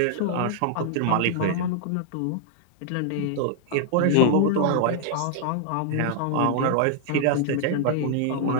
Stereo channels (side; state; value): both; different; correlation 0.00